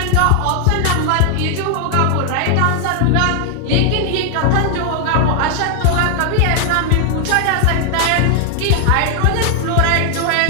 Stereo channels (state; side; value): different; both; correlation 0.00